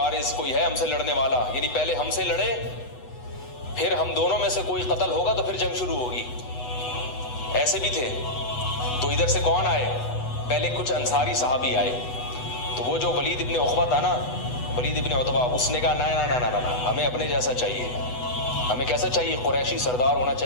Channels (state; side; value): late; right; 8.1 ms